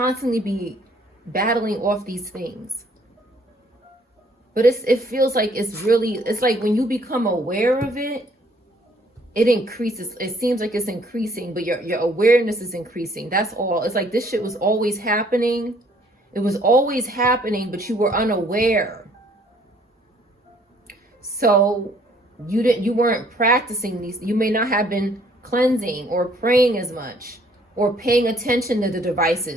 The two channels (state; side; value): normal; both; correlation 0.62